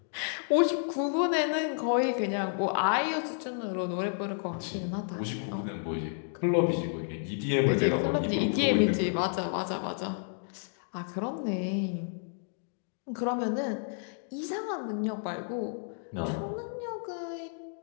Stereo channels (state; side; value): silent; right; digital silence